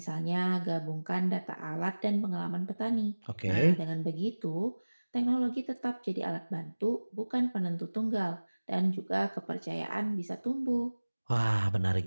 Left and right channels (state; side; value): inverted; both; correlation -1.00